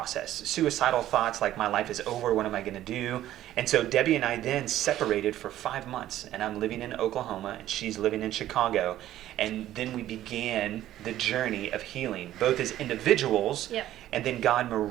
Suicidal thoughts like, my life is over, what am I going to do? And so Debbie and I then separated for 5 months, and I'm living in Oklahoma, and she's living in Chicago. And then we began the journey of healing, both as individuals, Yep. and then God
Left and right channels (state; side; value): quieter; left; 13.3 dB